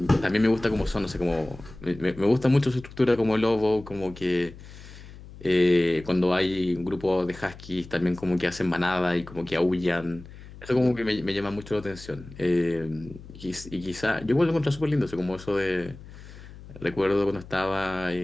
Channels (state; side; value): noise; left; hum, 17 dB below the sound